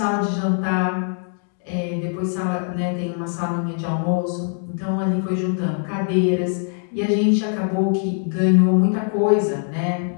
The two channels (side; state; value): right; silent; 56 dB below the other